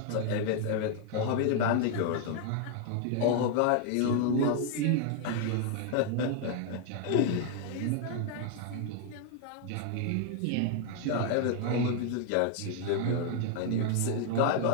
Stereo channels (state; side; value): different; both; correlation 0.00